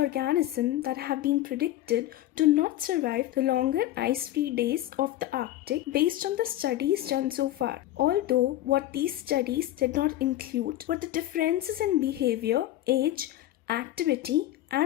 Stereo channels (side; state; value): right; quieter; 14.2 dB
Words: that have been predicted to not survive the longer ice-free days of the Arctic based on the studies done so far. Although what these studies did not include were the differences in behavior, age, activity,